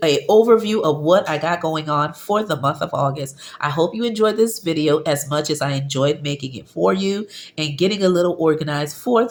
an overview of what I got going on for the month of August. I hope you enjoyed this video as much as I enjoyed making it for you and getting a little organized for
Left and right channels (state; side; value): identical; both; correlation 1.00